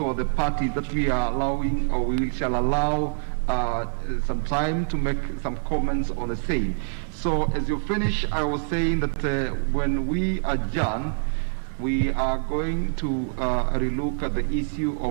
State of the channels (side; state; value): left; silent; 62 dB below the other